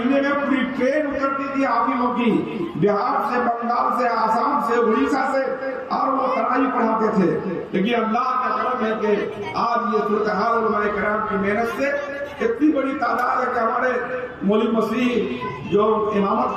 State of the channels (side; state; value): both; identical; correlation 1.00